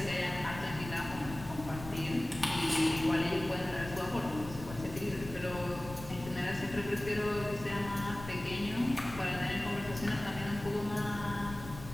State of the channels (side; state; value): left; noise; rumble, 12 dB below the sound